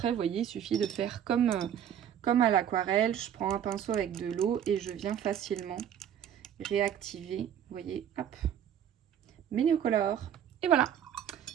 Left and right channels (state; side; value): quieter; left; 9.5 dB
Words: vous voyez, il suffit de faire comme à l'aquarelle. Je prends un pinceau avec de l'eau et je viens facilement réactiver, vous voyez, hop, mes néocolores. Et voilà.